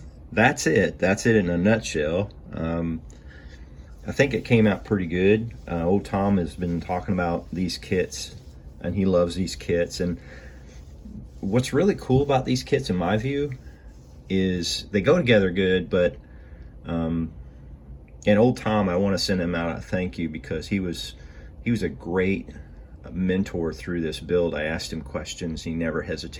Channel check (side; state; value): both; identical; correlation 1.00